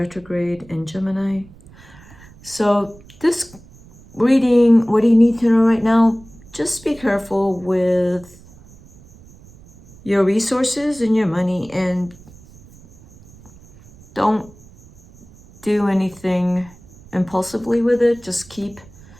in Gemini. So this reading, what do you need to know right now? Just be careful with your resources and your money, and don't do anything impulsively with it. Just keep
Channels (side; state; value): right; noise; rumble, 23 dB below the sound